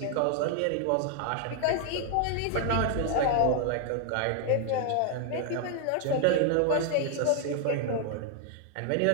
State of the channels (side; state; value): both; different; correlation 0.00